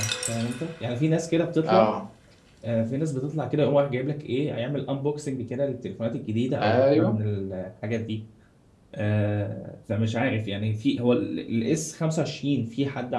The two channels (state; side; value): identical; both; correlation 1.00